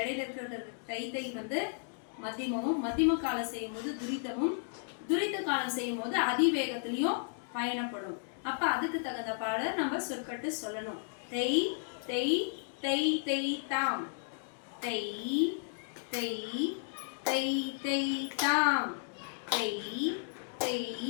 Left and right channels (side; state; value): right; silent; digital silence